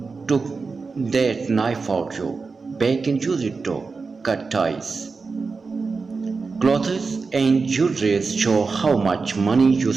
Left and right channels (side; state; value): left; quieter; 4.5 dB